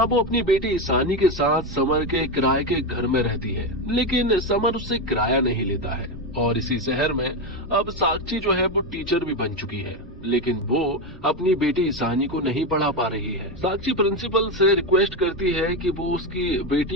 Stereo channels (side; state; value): both; normal; correlation 0.12